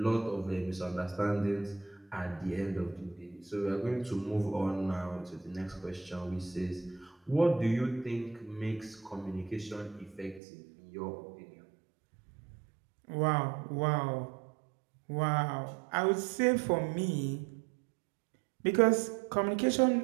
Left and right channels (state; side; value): drops out; left; at 10.4 s